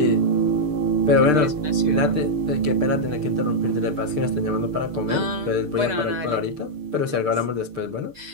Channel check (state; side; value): late; left; 6.7 ms